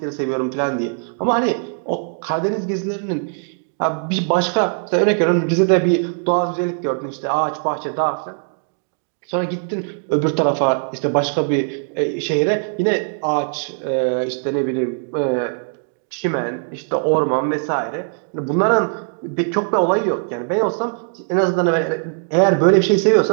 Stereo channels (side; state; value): left; silent; 62 dB below the other